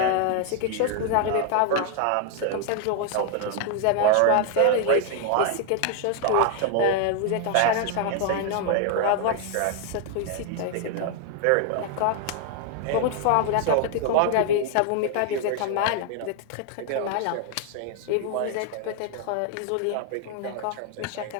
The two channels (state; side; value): different; both; correlation 0.00